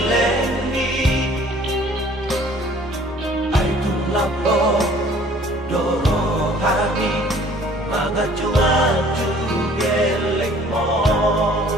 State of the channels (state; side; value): normal; both; correlation 0.54